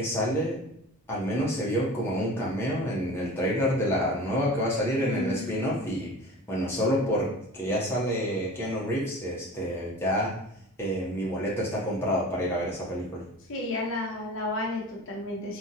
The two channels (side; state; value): both; normal; correlation 0.38